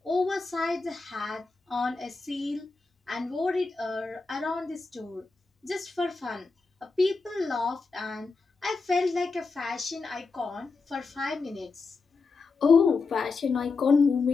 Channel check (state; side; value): quieter; right; 4.2 dB